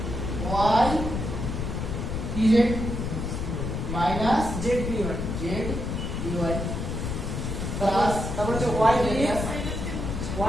Y P Z minus Z পি1 জেড পিওয়াই প্লাস তারপর হচ্ছে y px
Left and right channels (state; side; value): noise; left; rumble, 3 dB below the sound